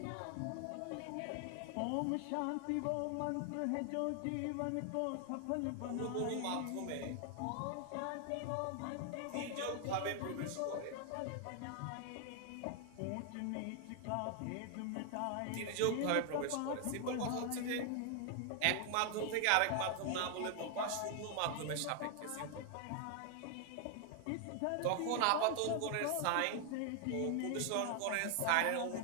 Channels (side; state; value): both; different; correlation 0.00